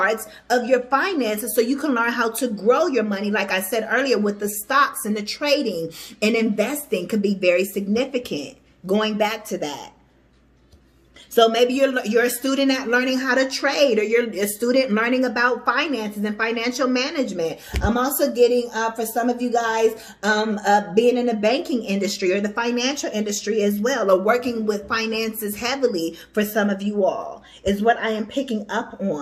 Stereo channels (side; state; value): both; identical; correlation 1.00